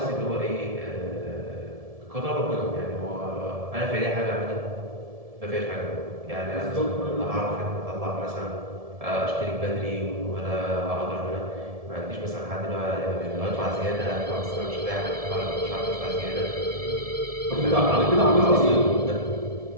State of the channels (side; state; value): left; late; 1.7 ms